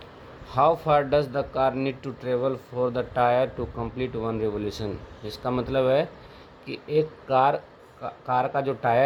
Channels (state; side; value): identical; both; correlation 1.00